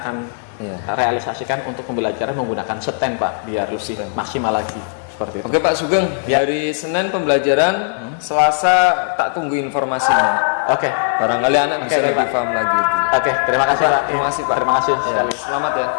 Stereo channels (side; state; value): right; silent; digital silence